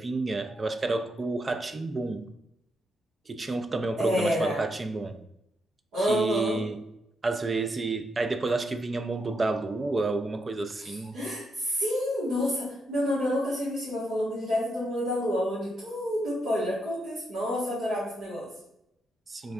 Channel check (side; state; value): both; normal; correlation 0.80